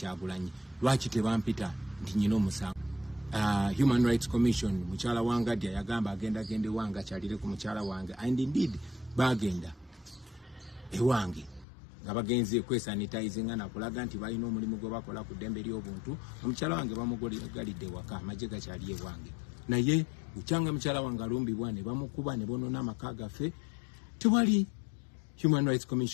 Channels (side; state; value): right; drops out; at 11.7 s